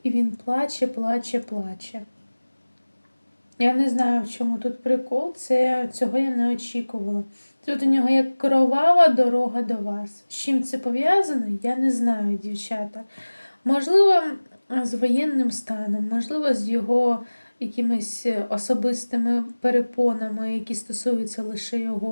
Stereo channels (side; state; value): both; inverted; correlation -1.00